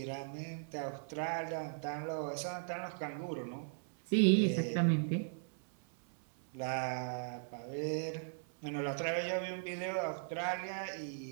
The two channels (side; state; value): left; silent; 52 dB below the other